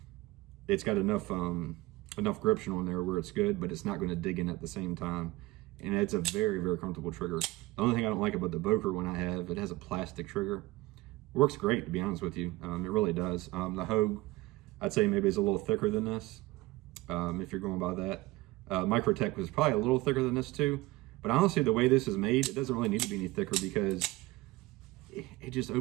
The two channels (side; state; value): left; quieter; 19.6 dB